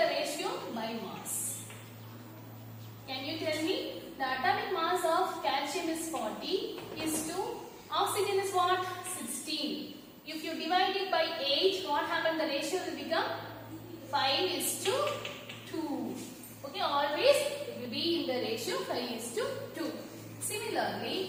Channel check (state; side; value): identical; both; correlation 1.00